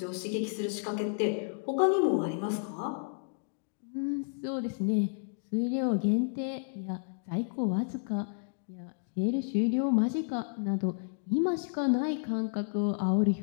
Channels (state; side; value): silent; right; digital silence